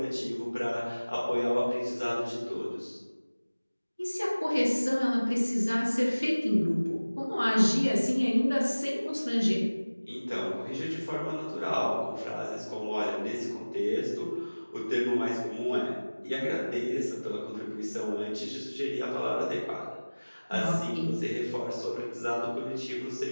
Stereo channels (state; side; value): inverted; both; correlation -1.00